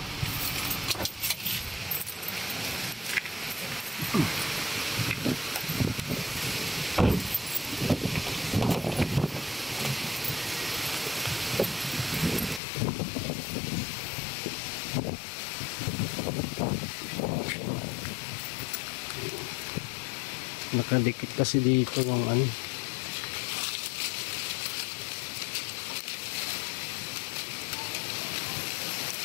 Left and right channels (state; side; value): drops out; right; at 12.6 s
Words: Nakadikit kasi dito yung ano.